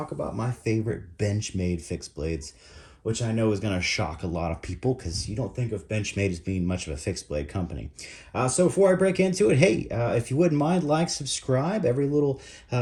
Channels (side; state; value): both; identical; correlation 1.00